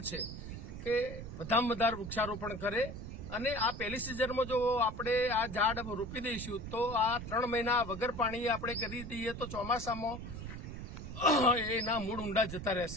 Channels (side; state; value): right; noise; rumble, 9 dB below the sound